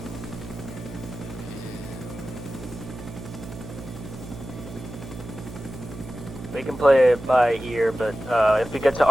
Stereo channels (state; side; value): noise; right; hum, 12 dB below the sound